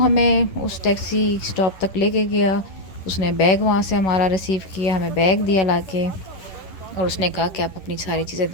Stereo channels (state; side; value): late; right; 11 ms